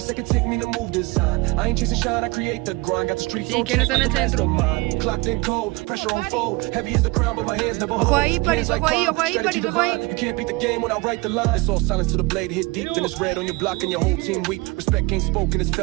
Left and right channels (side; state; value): left; quieter; 24.6 dB